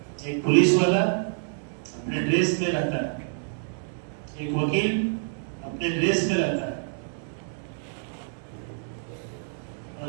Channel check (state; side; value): silent; left; digital silence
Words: ایک پولیس والا اپنے ڈریس میں رہتا ہے، ایک وکیل اپنے ڈریس میں رہتا ہے، اور